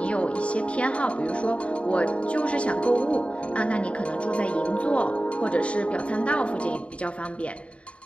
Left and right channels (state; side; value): late; right; 0.061 ms